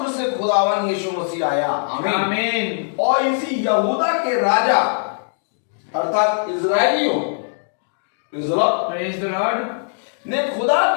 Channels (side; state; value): right; silent; digital silence